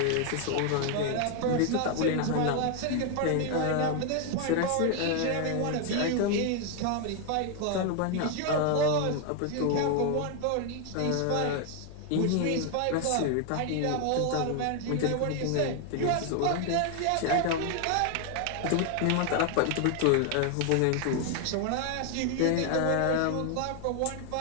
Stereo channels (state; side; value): different; both; correlation 0.00